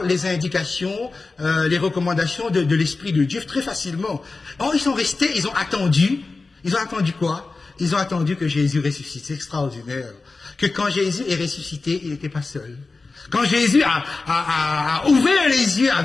les indications, les recommandations de l'Esprit de Dieu très facilement. Or, ils sont restés, ils ont attendu. Ils ont attendu quoi? Ils ont attendu que Jésus ressuscite. C'est extraordinaire. Que quand Jésus est ressuscité, il n'était pas seul. Quand Jésus a ouvert les yeux, a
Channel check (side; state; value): right; quieter; 3.8 dB